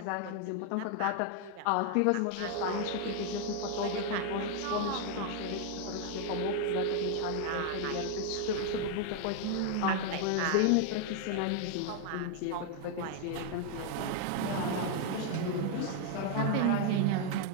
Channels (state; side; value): different; both; correlation 0.00